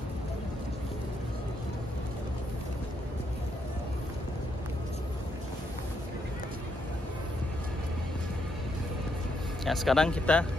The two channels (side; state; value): both; normal; correlation 0.77